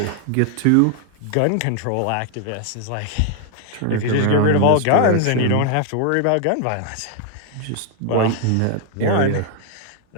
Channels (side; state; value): both; different; correlation 0.00